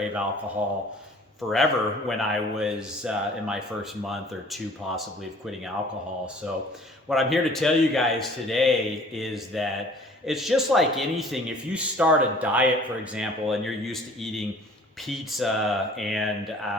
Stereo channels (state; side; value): normal; both; correlation 0.51